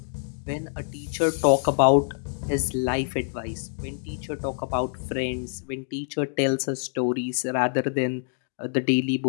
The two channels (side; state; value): right; silent; digital silence